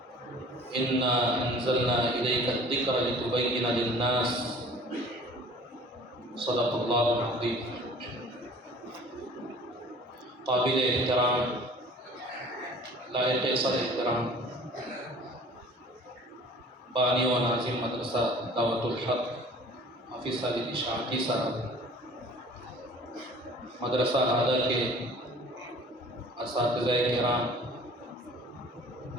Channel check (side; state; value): both; normal; correlation 0.48